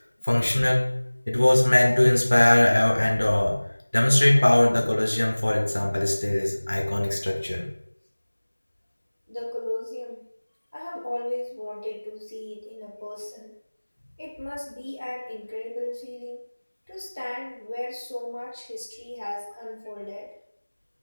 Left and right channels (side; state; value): both; inverted; correlation -1.00